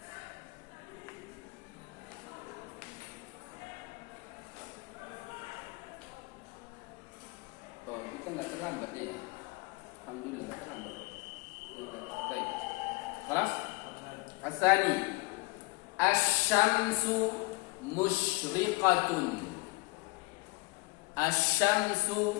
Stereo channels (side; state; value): right; quieter; 25.0 dB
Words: Oh, kita nggak terlambat ya. Alhamdulillah nggak terlambat. Baik. Kelas? Asani. Asy-syamsu musyriqatun.